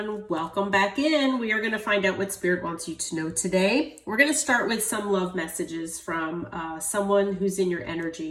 welcome back in. We are going to find out what Spirit wants you to know today. We're going to start with some love messages from someone who's in your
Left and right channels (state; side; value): identical; both; correlation 1.00